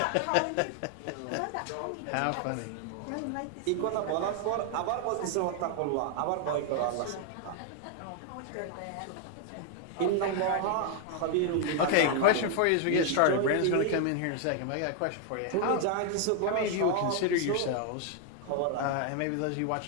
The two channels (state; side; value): different; both; correlation 0.00